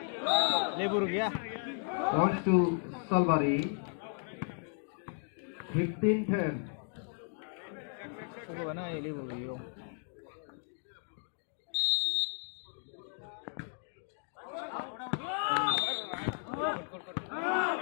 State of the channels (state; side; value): silent; right; 55 dB below the other